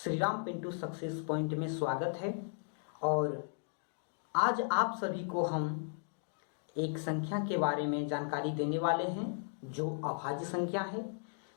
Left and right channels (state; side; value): silent; right; digital silence